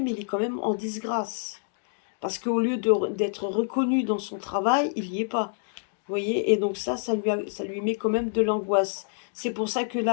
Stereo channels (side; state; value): right; silent; digital silence